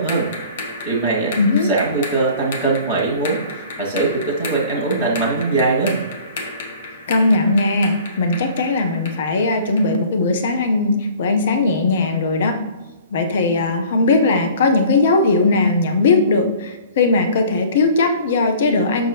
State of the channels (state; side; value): inverted; both; correlation -0.49